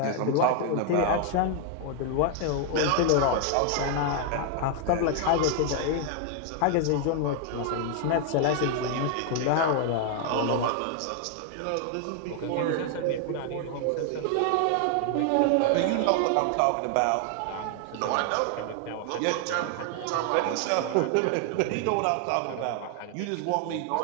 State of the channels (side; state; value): both; different; correlation 0.00